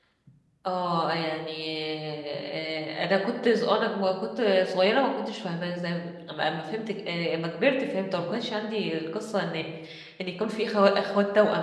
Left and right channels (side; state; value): both; identical; correlation 1.00